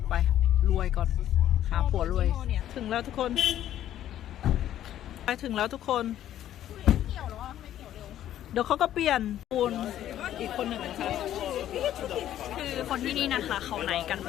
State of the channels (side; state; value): right; quieter; 11.8 dB